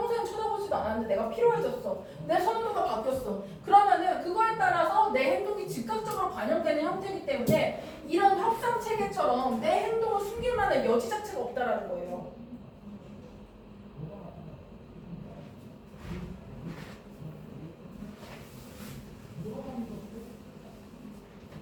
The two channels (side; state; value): both; identical; correlation 1.00